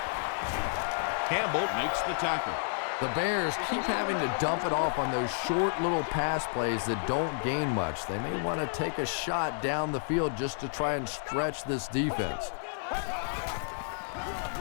Campbell makes the tackle. The Bears keep having to dump it off on those short little pass plays that don't gain much. They may want to take a shot down the field just to try and stretch this defense.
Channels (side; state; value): right; silent; digital silence